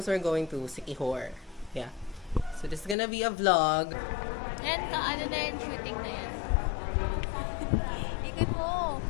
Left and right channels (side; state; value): right; drops out; at 3.0 s